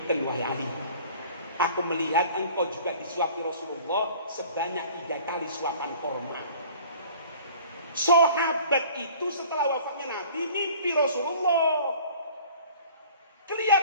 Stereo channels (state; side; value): inverted; both; correlation -0.48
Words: wahai Ali. Aku melihat engkau juga disuapi Rasulullah sebanyak 3 kali suapan korma. Sahabat itu setelah wafatnya Nabi mimpi Rasulullah.